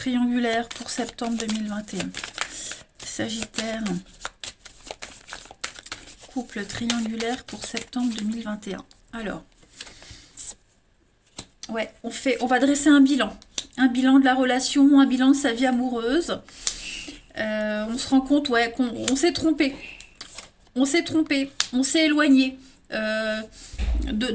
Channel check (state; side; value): identical; both; correlation 1.00